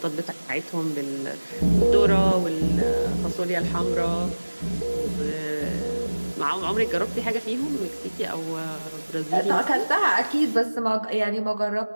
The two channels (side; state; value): both; inverted; correlation -1.00